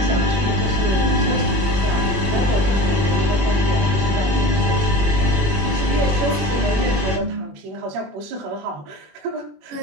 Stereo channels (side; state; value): left; late; 21 ms